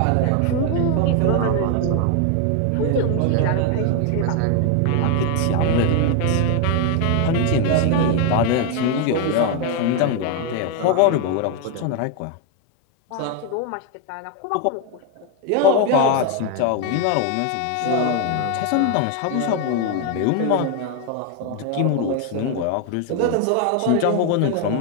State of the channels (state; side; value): different; both; correlation 0.01